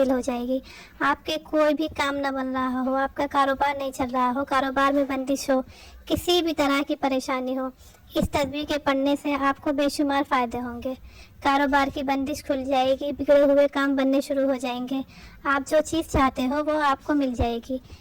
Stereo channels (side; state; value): both; identical; correlation 1.00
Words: ہو جائے گی۔ آپ کے کوئی بھی کام نہ بن رہا ہو، آپ کا کاروبار نہیں چل رہا ہو، کاروبار میں بندش ہو، کسی بھی طرح کی پریشانی ہو، اس تسبیح کے پڑھنے سے آپ کو بے شمار فائدے ہوں گے۔ کاروبار کی بندش کھل جائے گی، بگڑے ہوئے کام بننے شروع ہو جائیں گے، آپ جو چیز چاہتے ہو وہ آپ کو مل جائے گی۔